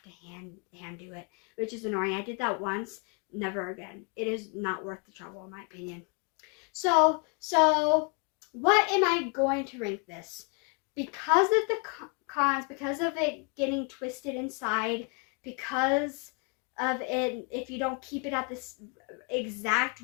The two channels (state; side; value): quieter; right; 36.1 dB